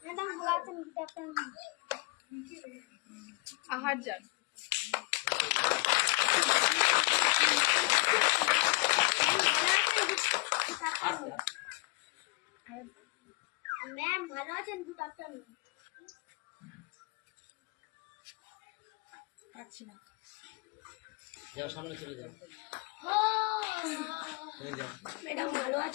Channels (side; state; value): right; quieter; 27.2 dB